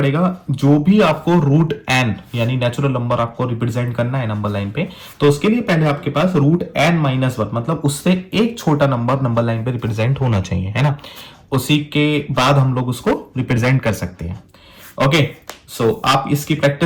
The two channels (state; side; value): identical; both; correlation 1.00